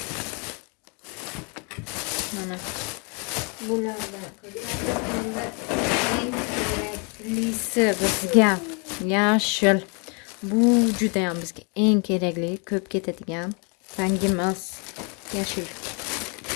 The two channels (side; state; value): right; quieter; 35.0 dB